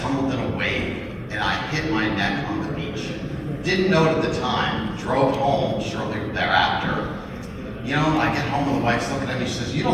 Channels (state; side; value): identical; both; correlation 1.00